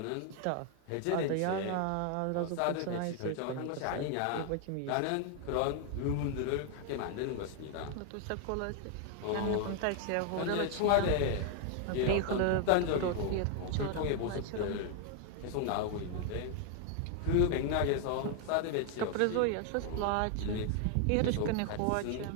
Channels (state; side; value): different; both; correlation 0.00